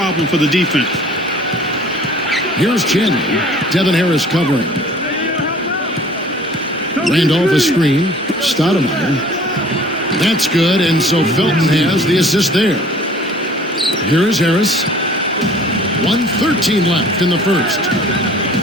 for the defense. Here's Chandler. Devin Harris covering. Randolph a screen. Stoudemire. That's good, and so Felton has the assist there. Here is Harris. 1:13 left in the first.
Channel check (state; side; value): normal; both; correlation 0.50